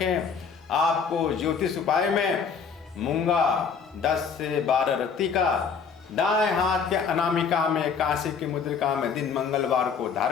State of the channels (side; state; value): right; quieter; 6.1 dB